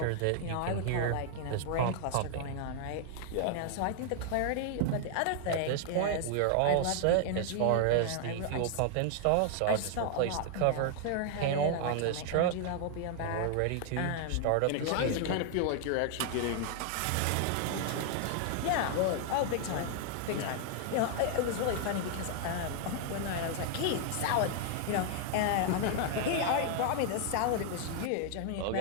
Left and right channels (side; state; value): both; different; correlation 0.00